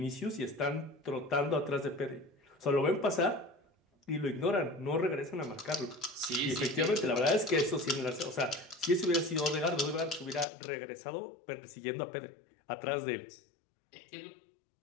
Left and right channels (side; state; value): right; drops out; at 10.5 s